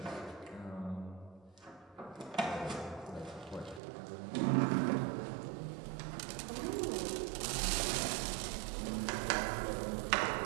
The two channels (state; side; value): drops out; left; at 3.8 s